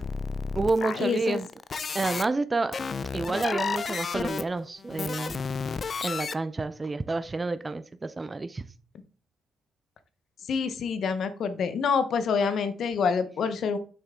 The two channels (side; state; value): both; normal; correlation 0.82